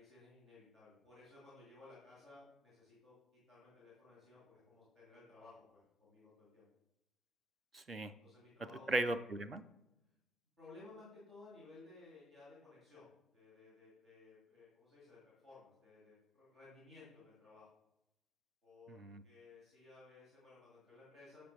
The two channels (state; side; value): normal; both; correlation 0.75